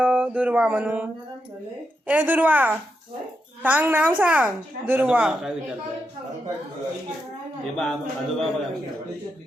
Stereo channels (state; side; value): normal; both; correlation 0.84